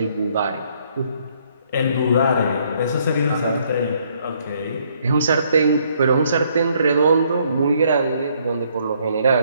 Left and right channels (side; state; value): both; inverted; correlation -0.68